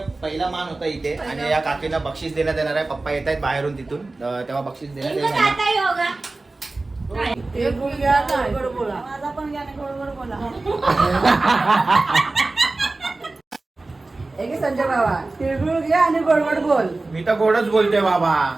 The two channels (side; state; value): left; quieter; 3.2 dB